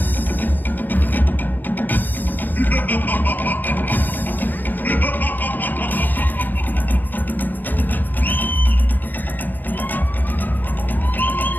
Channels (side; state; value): right; late; 0.090 ms